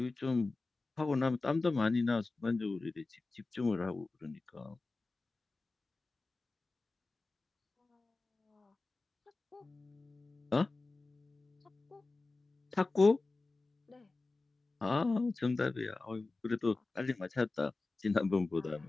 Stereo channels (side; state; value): right; quieter; 3.5 dB